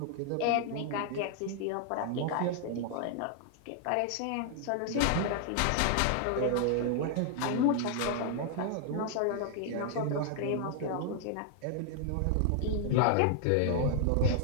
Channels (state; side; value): different; both; correlation 0.00